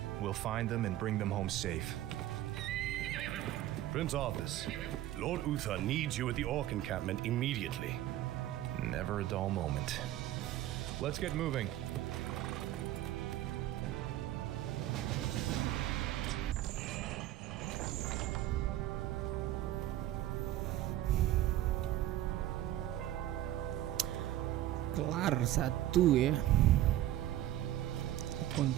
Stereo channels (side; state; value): left; quieter; 13.7 dB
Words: We'll find them and bring them home safe. Prince Arthas, Lord Uther needs you at the Orc encampment immediately. Never a dull moment. Let's get moving. Kelar satu ya.